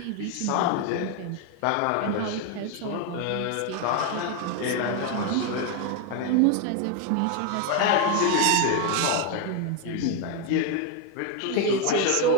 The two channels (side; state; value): both; different; correlation 0.01